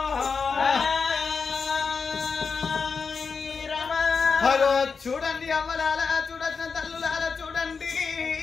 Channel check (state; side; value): quieter; right; 5.3 dB